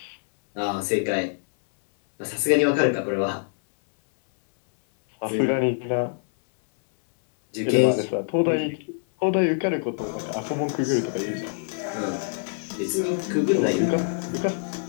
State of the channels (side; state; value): right; silent; 62 dB below the other